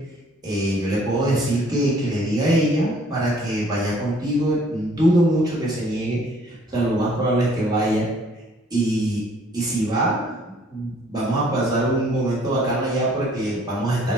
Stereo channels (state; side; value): normal; both; correlation 0.59